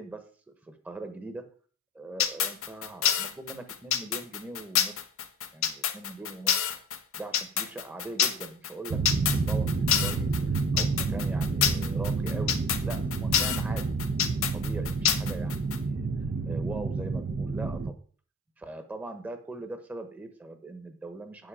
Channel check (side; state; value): both; normal; correlation 0.38